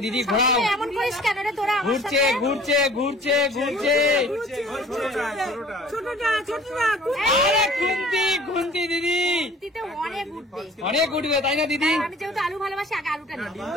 दीदी घोड़ाओ घूरचे घूरचे घूरचे घूरचे अरे घुमती घुमती दीदी অনেক উঠবে তাই না দিদি? আমি যেহেতু আলু ভালোবাসি আগে আলুটা নেব।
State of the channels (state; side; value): normal; both; correlation 0.49